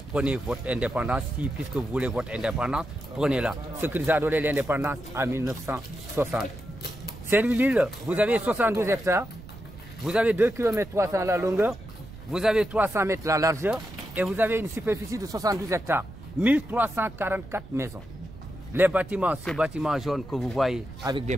votre indépendance, puisque vous voulez votre indépendance, prenez-la. Ce qui nous a donné l'indépendance en 1960. Saint-Louis-l'Île, vous avez 72 hectares, vous avez 2 km 300 la longueur, vous avez 300 mètres la largeur et vous avez une superficie de 72 hectares. 1344 maisons. Les bâtiments, ce bâtiment jaune que vous voyez avec des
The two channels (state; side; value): noise; right; rumble, 16 dB below the sound